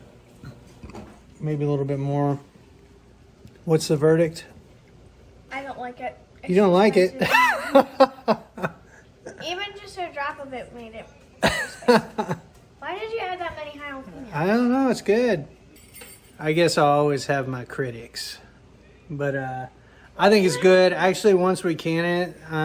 Maybe a little bit more. What's the verdict? I don't like it. You don't like it? Even just a drop of it made it. Why did you add that many jalapenos? I don't know. It's good. I guess I'll always have my critics. But I think it's good. Actually, once we can it,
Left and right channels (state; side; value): identical; both; correlation 1.00